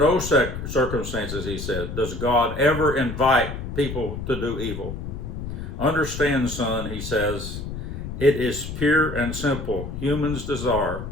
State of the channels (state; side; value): noise; left; rumble, 7 dB below the sound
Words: circumstances, he said, does God ever invite people to do evil. Understand, son, he says, it is pure and simple humans' desire